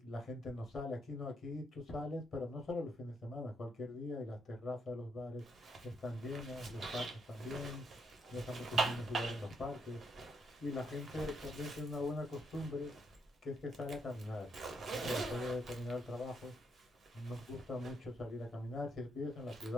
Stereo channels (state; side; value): normal; both; correlation 0.77